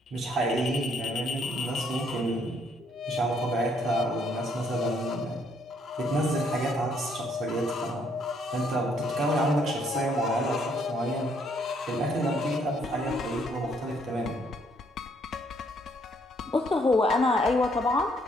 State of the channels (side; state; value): both; normal; correlation 0.68